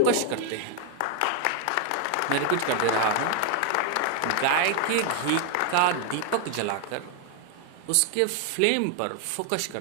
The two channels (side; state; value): both; different; correlation 0.00